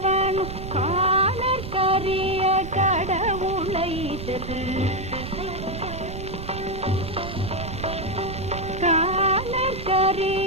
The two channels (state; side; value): noise; right; rumble, 8 dB below the sound